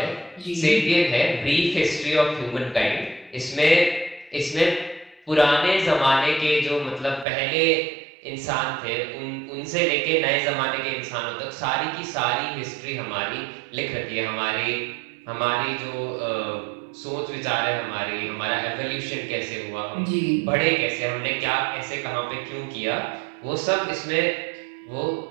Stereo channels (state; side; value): drops out; left; at 7.2 s